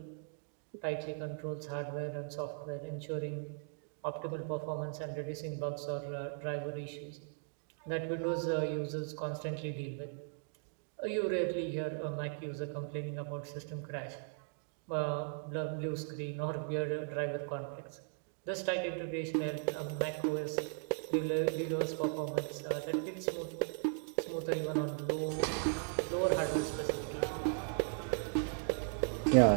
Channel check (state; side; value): silent; left; 53 dB below the other